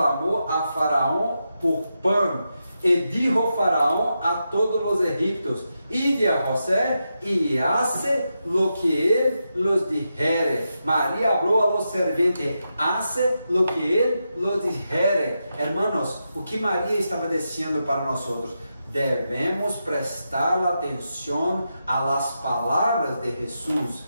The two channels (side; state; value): both; inverted; correlation -0.87